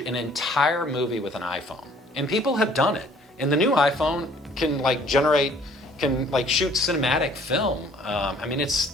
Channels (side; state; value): both; normal; correlation 0.57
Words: an entire movie with an iPhone, and people have done it. And the new iPhone can shoot cinematic film.